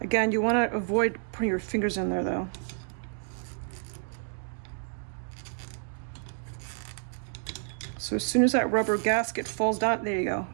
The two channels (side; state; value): left; silent; digital silence